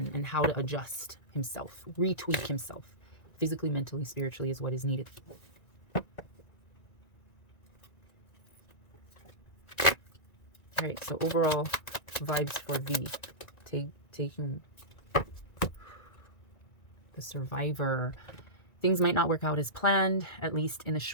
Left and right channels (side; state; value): right; late; 1.9 ms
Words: how to adjust himself, retweak himself, physically, mentally, spiritually, is what is needed. All right, so overall vibes for V. Taehyung, the survivor. Things might not work out as planned, at least in the